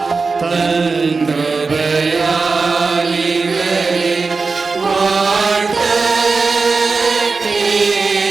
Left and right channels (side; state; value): left; quieter; 4.3 dB